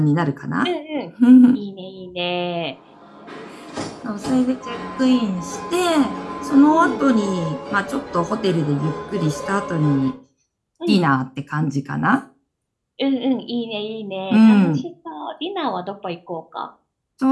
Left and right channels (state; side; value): identical; both; correlation 1.00